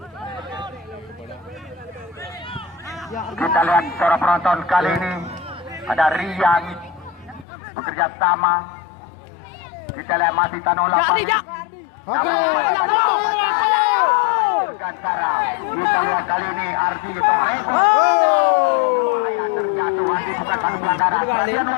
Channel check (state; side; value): drops out; right; at 7.5 s